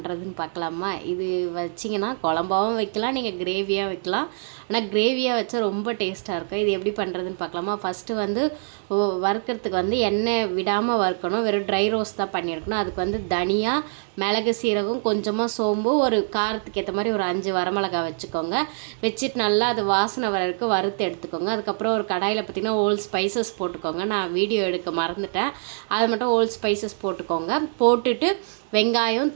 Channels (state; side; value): silent; left; digital silence